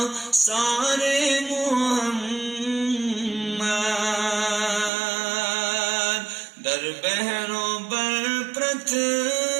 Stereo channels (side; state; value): left; drops out; at 4.9 s